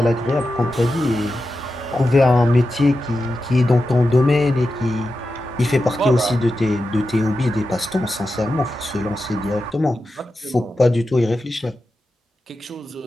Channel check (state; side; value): normal; both; correlation 0.91